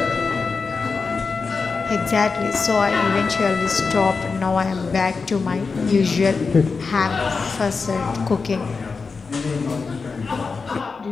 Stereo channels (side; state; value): right; quieter; 4.7 dB